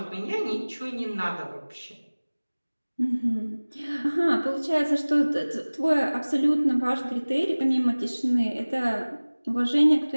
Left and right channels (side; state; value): both; inverted; correlation -1.00